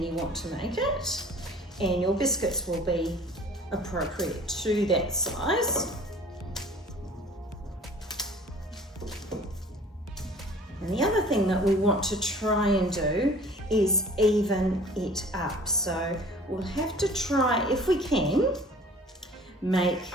you want to make it, and your biscuits will be appropriate to that size. And the other thing that we want to try and do is even it up. So we'll have to try, if we can, make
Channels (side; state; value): both; normal; correlation 0.48